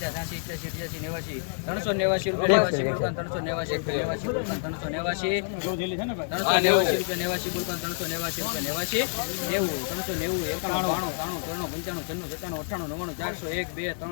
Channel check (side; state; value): right; silent; digital silence